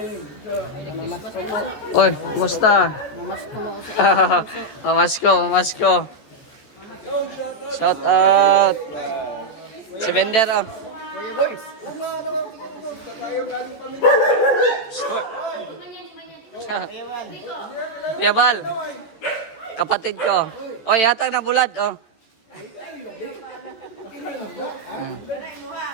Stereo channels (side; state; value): right; late; 14 ms